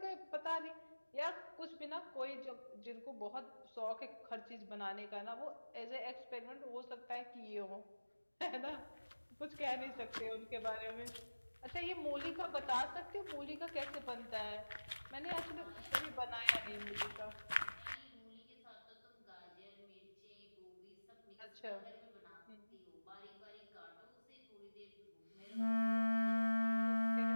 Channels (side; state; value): both; inverted; correlation -1.00